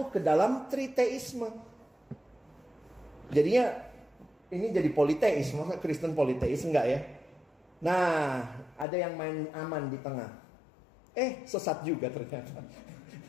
ke dalam triteisme. Jadinya ini jadi politeis, masa Kristen politeis enggak ya? Nah ada yang main aman di tengah. Sesat juga ternyata.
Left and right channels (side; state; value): right; drops out; at 8.8 s